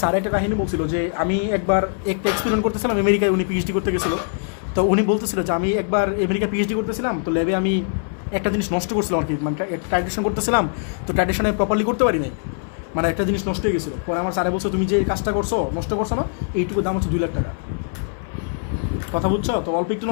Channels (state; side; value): silent; right; 57 dB below the other